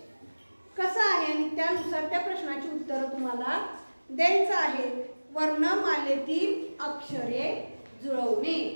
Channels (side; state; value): both; inverted; correlation -1.00